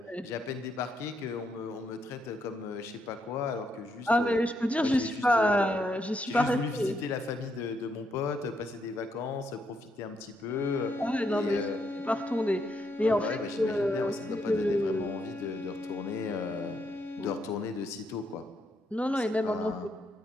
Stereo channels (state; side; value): normal; both; correlation 0.77